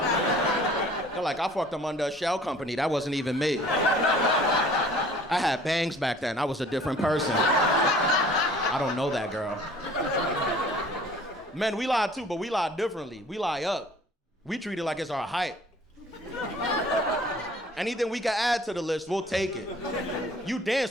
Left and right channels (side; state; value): both; normal; correlation 0.51